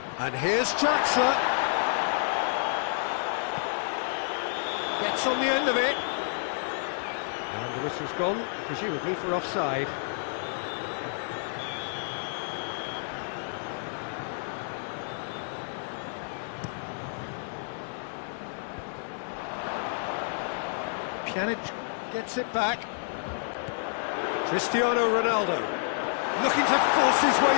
And here's Draxler. Gets on the end of it. And the whistle's gone, presumably for offside. Pjanic gets it back. Cristiano Ronaldo looking to force his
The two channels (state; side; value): silent; right; 57 dB below the other